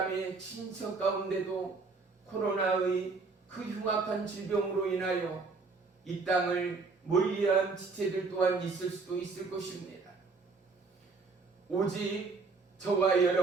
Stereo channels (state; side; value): quieter; left; 4.2 dB